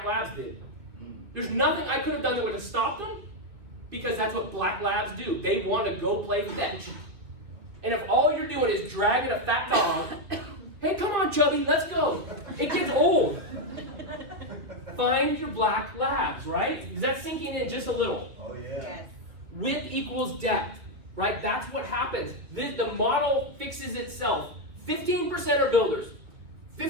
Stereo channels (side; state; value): left; late; 2.7 ms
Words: Labs did. There's nothing I could have done that would have stopped them because that's what Black Labs do. They want to go play fetch. And if all you're doing is dragging a fat dog, hey, come on, Chubby, let's go. It gets old. Find your Black Labs, right? Is that sinking in just a little? Oh, yeah. Yes. Width equals depth, right? That's what happens. The model fixes itself. 15% are builders.